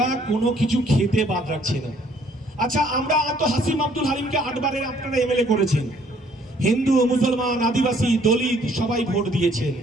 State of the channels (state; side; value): normal; both; correlation 0.62